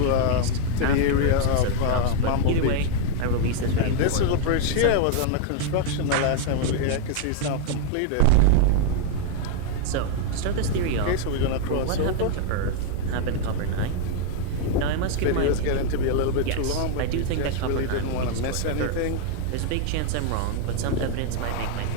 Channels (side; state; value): both; different; correlation 0.00